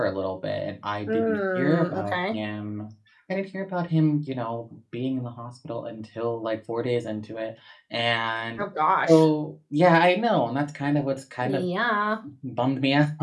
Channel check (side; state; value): both; identical; correlation 1.00